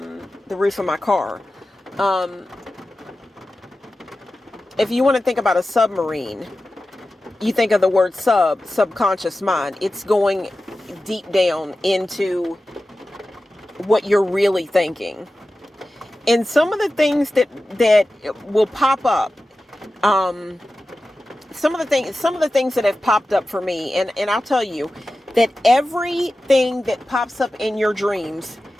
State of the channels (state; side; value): normal; both; correlation 0.94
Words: the roof of my car. If you want to think about a submarine, you think of the word subconscious mind. It's going deep down into what you're really thinking. And some of the things that will pop up, some of the things that have popped up for me, and I'll tell you that everything that pops up in your dreams